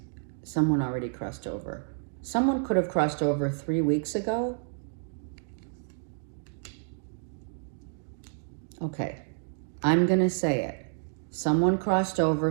someone already crossed over. Someone could have crossed over 3 weeks ago. Okay. I'm going to say it. Someone crossed over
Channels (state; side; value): silent; left; digital silence